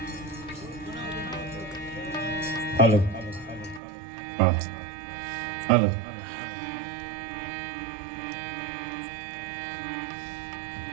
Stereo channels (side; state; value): left; drops out; at 3.8 s